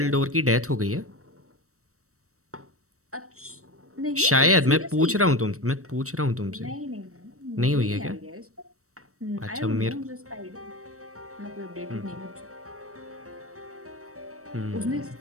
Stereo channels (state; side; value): late; left; 0.64 ms